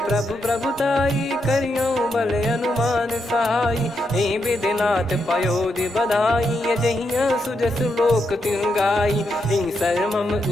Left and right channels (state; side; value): normal; both; correlation 0.82